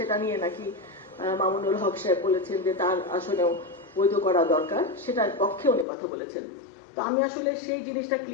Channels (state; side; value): drops out; right; at 5.9 s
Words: নিয়ে নাকি মামুনুল হক সাহেব বলেছেন যে তার আসলেও বৈধ করা দরকার, সেটার পক্ষে উনি কথা বলেছেন। তো আমি আসলে সেই জিনিসটা